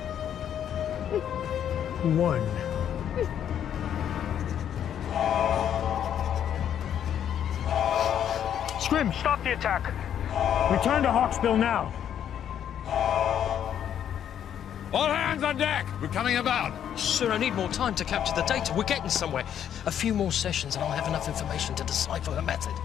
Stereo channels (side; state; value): right; quieter; 9.5 dB